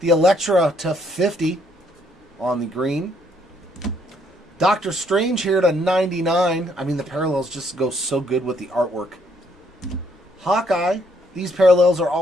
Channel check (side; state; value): both; normal; correlation 0.69